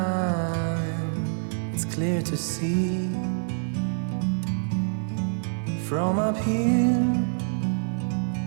It's clear to see from up here.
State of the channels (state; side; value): silent; left; digital silence